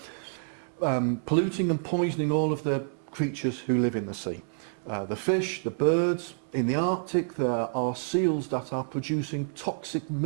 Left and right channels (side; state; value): left; silent; 59 dB below the other